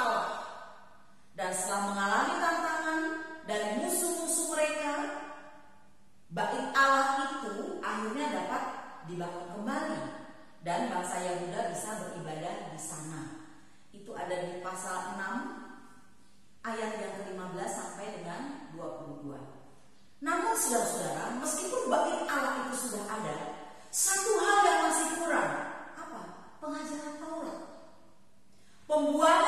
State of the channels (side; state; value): both; identical; correlation 1.00